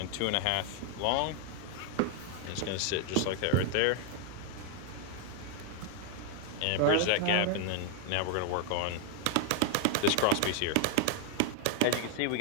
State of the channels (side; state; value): both; different; correlation 0.00